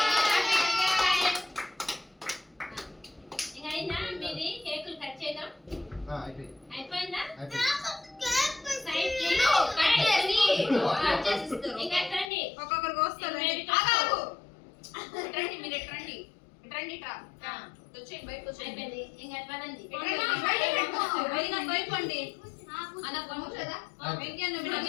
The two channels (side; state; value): right; drops out; at 12.3 s